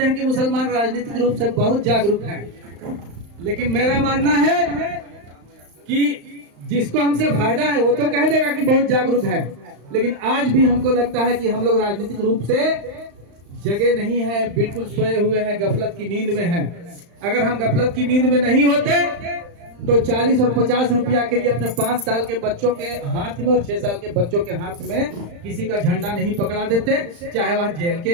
हैं कि मुसलमान राजनीतिक रूप से बहुत जागरूक हैं, लेकिन मेरा मानना है कि जिसको हमसे फायदा है वो तो कह देगा कि बहुत जागरूक है, लेकिन आज भी हमको लगता है कि हम लोग राजनीतिक रूप से जगह नहीं है, बिल्कुल सोए हुए हैं, गफलत की नींद में हैं। अगर हम गफलत की नींद में नहीं होते तो 40 और 50 रुपया के लिए अपने 5 साल के बच्चों के हाथ में और 6 साल के बच्चों के हाथ में किसी का झंडा नहीं पकड़ा देते, चाहे वह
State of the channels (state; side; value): late; left; 35 ms